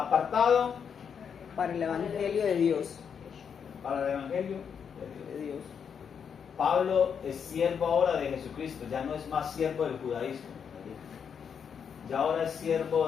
Para el Evangelio de Dios. para el Evangelio. De Dios. Pablo es siervo ahora de Jesucristo, ya no es más siervo del judaísmo. Ya ahora es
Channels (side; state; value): right; quieter; 7.1 dB